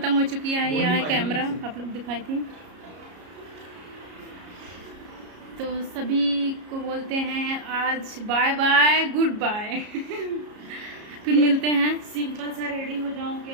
हो चुकी है। ये है कैमरा, आप लोग दिखाई थी। तो सभी को बोलते हैं आज बाय बाय, गुड बाय। फिर मिलते हैं। सिंपल सा रेडी हो जाऊं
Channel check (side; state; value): left; late; 33 ms